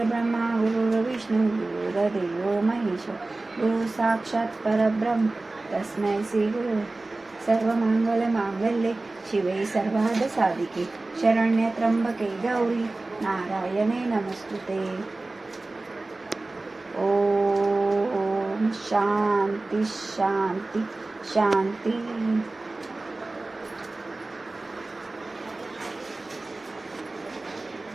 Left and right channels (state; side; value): quieter; left; 3.1 dB